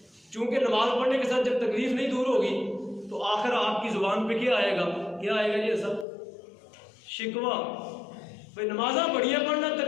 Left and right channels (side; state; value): right; drops out; at 6.1 s